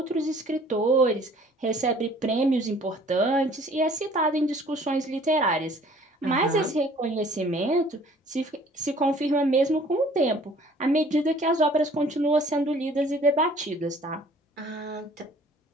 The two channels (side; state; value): both; normal; correlation 0.54